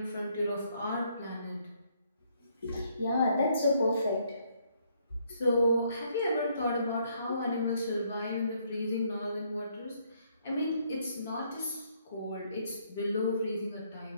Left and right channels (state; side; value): inverted; both; correlation -0.69